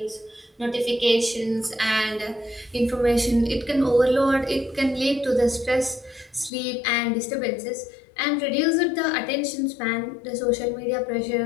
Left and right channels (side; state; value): right; drops out; at 6.5 s